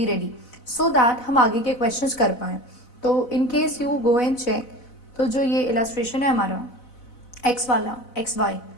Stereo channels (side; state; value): right; late; 4.0 ms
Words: ready so that हम आगे के questions कर पाएँ. तो in case you go and check, तो जो ये illustration है हमारा एक्स वाला एक्स वाई